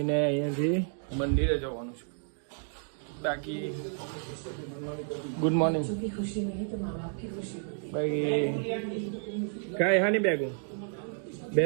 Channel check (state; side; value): silent; left; 57 dB below the other